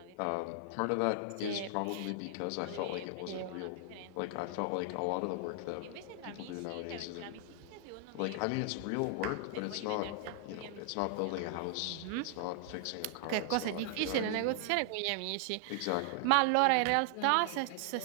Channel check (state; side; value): different; both; correlation 0.00